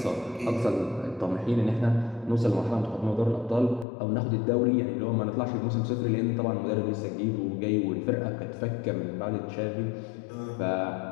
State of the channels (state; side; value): drops out; right; at 3.9 s